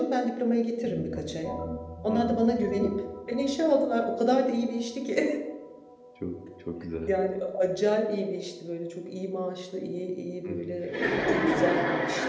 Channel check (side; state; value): both; identical; correlation 1.00